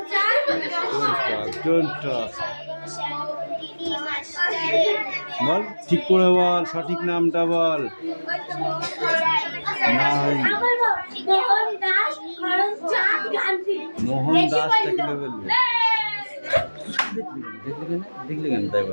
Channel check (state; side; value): inverted; both; correlation -1.00